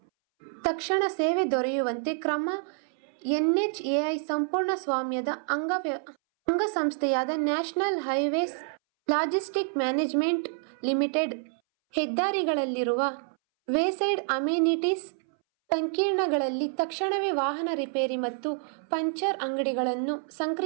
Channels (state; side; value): silent; left; 59 dB below the other